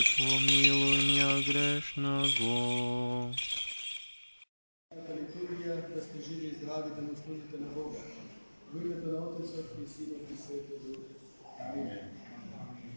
помилуй меня грешного. Литургия, да сте живи и здрави, да му служите на Бога. В името на Отецът и Синът и Светия Дух. Амин.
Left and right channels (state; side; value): inverted; both; correlation -1.00